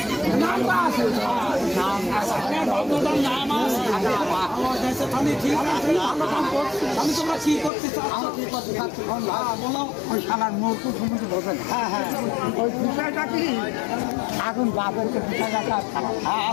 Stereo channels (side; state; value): right; drops out; at 7.7 s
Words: নাম আছে, নাম আছে, নাম আছে। আমি তোমরা কি করতে চাচ্ছ? বলো। ওই শালার মূর্তি সমুদ্র বলবেন। হ্যাঁ হ্যাঁ, ওই বিষয়টা কি এখন বাপেরকে বিষয়টা